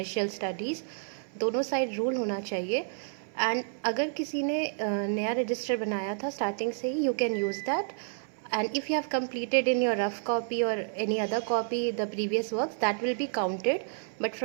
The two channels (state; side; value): silent; left; 58 dB below the other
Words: studies. दोनों side rule होना चाहिए. And अगर किसी ने नया register बनाया था starting से ही, you can use that. And if you have completed in your rough copy or any other copy the previous works, that will be counted. But